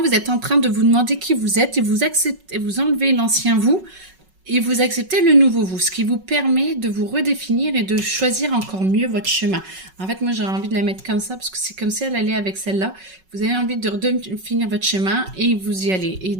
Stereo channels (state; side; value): late; left; 5.4 ms